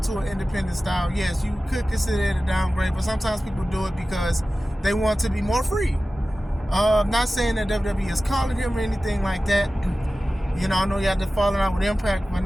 to an independent style, yes, you could consider it a downgrade, but sometimes people do it because they want to be more free. I'm not saying that WWE is calling him or anything like that. You know, I know you had to falling out with Impact by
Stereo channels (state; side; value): normal; both; correlation 0.96